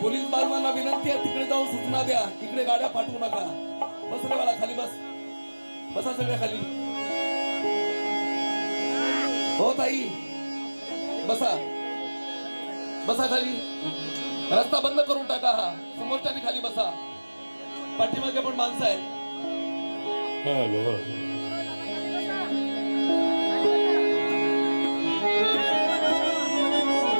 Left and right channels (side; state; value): both; inverted; correlation -1.00